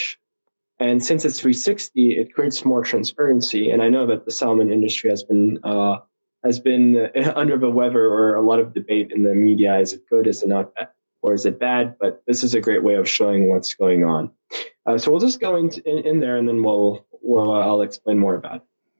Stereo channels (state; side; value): inverted; both; correlation -1.00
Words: And since it's 360, it creates more transparency. And I know that the salmon industry has been under the weather, or a lot of debate in the media. Is it good? Is it not? Or is it bad? But this is a great way of showing what's going on. So we'll just go in there, and then I'll explain more about it.